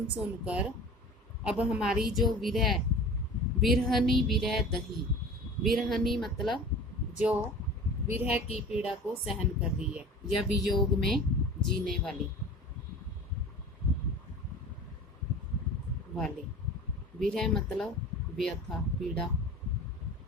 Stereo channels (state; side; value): normal; both; correlation 0.39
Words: सुन कर अब हमारी जो विरह, विरहनी विरह दही, विरहनी मतलब जो विरह की पीड़ा को सहन कर रही है या वियोग में जीने वाली, विरह मतलब व्यथा पीड़ा,